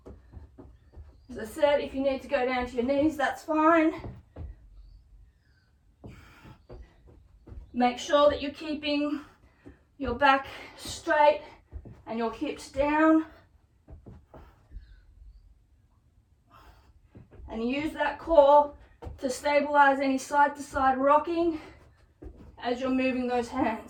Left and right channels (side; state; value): both; identical; correlation 1.00